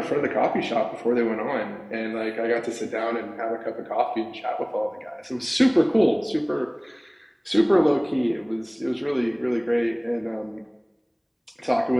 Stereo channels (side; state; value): both; identical; correlation 1.00